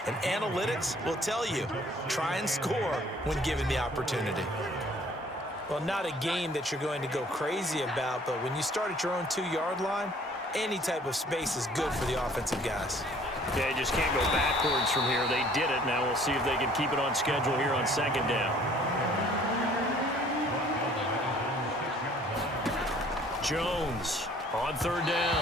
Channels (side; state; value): both; normal; correlation 0.56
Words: And analytics will tell you, try and score when given the opportunity. Well, not a game that you're going to go crazy about, but when you start at your own 2-yard line, any type of space is good for the offensive guys. Yeah, you just can't go backwards from here. They did it. Now we'll see if they can keep it on schedule here on 2nd down. Jones on 3rd